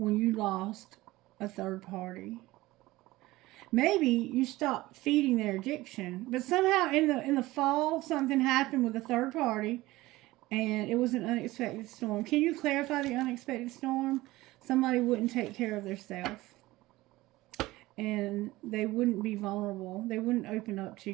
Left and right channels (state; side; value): quieter; left; 18.6 dB